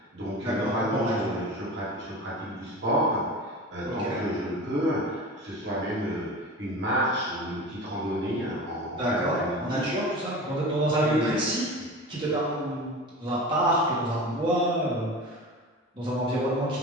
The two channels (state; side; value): normal; both; correlation 0.33